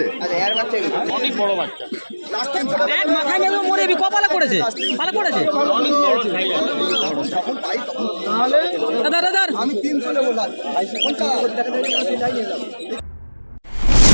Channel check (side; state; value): both; inverted; correlation -1.00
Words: অনেক বড় বাচ্চা, এক মাথায় নেবে মরে বি কপালে পড়েছে, ভালো পড়েছে। অনেক বড় সাইজ আছে। দাদা দাদা আমি 300 নেবো লাল।